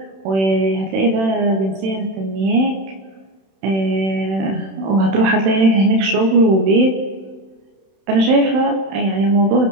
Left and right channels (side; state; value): left; late; 31 ms